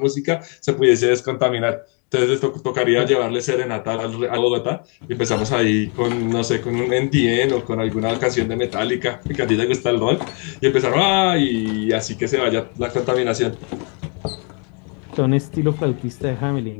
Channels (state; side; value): quieter; right; 37.1 dB